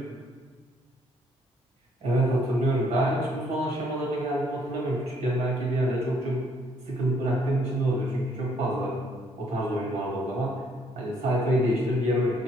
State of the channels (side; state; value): both; normal; correlation 0.67